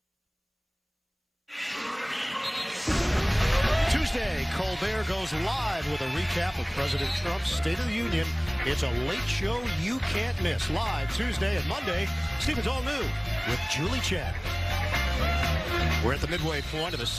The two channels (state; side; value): identical; both; correlation 1.00